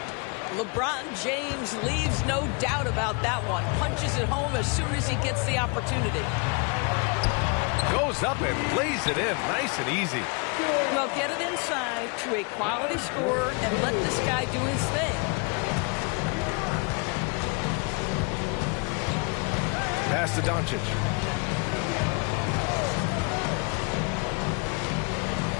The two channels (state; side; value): quieter; right; 33.2 dB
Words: LeBron James leaves no doubt about that one. Punches it home as soon as he gets the opportunity. Goes up and lays it in. Nice and easy. Well, get it inside to a quality scorer and let this guy do his thing. Pass to Doncic.